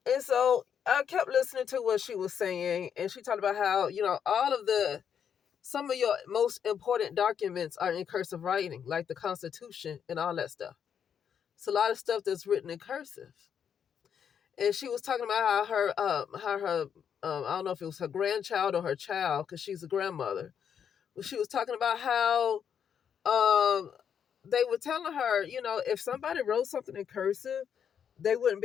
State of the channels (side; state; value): right; quieter; 8.0 dB